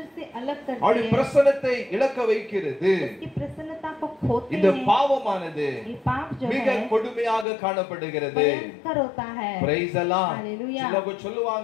से अलग करते அவருடைய हैं, பிரசன்னத்தை இழக்க வைக்கிறது. उसकी प्रसन्नता को खोते இந்த हैं। பாவமானது ये पाप जो மிக है கொடுமையாக காணப்படுகிறது. भयंकर होता है। பிரைஸ் எல்லாம் हालेलुया। சிலவங்க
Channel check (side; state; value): right; drops out; at 7.5 s